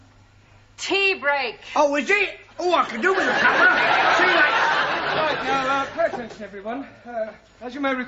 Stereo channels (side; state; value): both; identical; correlation 1.00